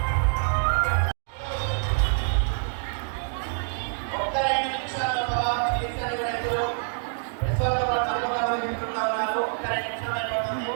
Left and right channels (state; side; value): silent; left; digital silence